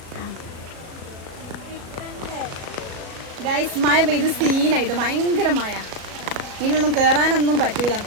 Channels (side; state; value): left; late; 37 ms